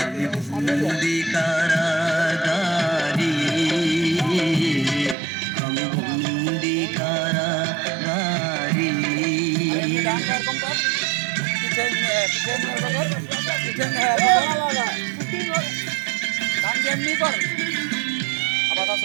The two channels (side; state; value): left; drops out; at 5.2 s